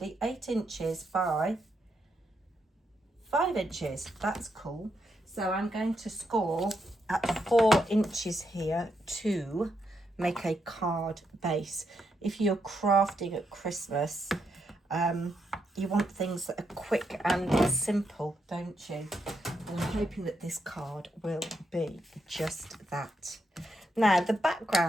8 inches by 5 inches. That's cool. So I'm going to score at 4 inches here to make a card base. If you're crafting at Christmas, you want things that are quick and simple, don't you? And I'm hoping that this card will be just that. Now, the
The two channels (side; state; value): both; normal; correlation 0.81